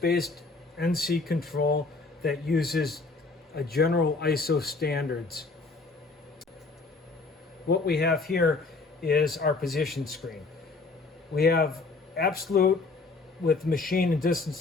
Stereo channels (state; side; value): quieter; right; 3.8 dB